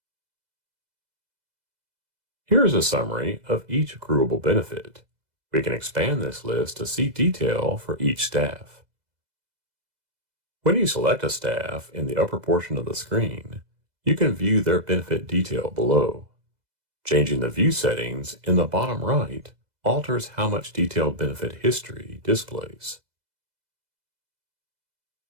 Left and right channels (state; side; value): late; left; 2.0 ms